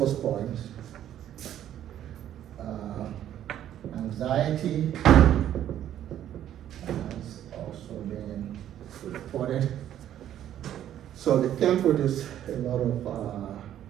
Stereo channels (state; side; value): quieter; left; 11.2 dB